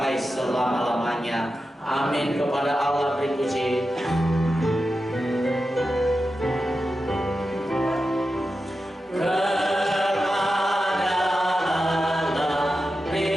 selama-lamanya. Amin. Kepada Allah beri puji.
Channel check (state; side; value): normal; both; correlation 0.91